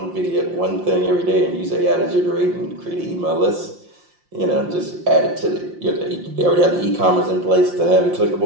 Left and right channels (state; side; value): late; left; 5.7 ms